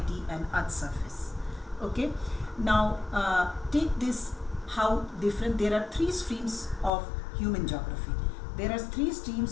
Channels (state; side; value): drops out; right; at 6.9 s